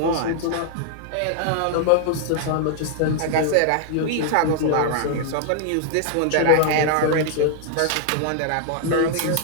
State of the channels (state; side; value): different; both; correlation 0.00